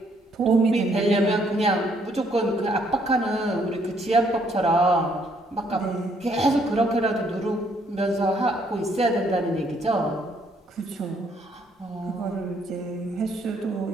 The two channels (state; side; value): normal; both; correlation 0.69